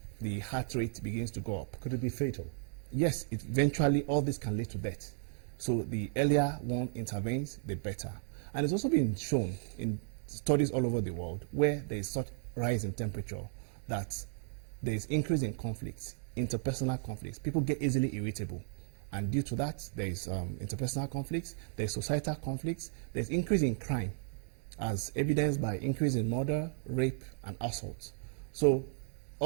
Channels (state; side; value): silent; left; digital silence